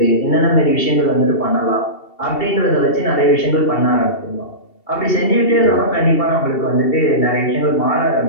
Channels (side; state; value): right; late; 2.7 ms